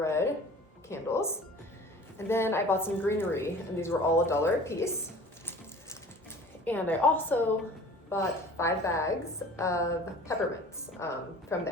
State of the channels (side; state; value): both; normal; correlation 0.44